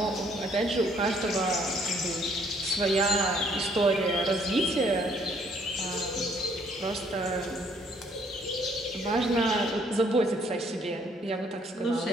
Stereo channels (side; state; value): both; normal; correlation 0.64